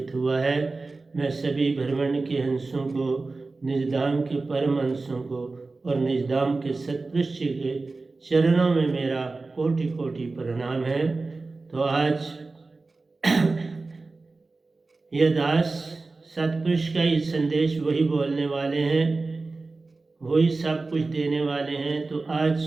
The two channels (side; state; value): left; quieter; 3.6 dB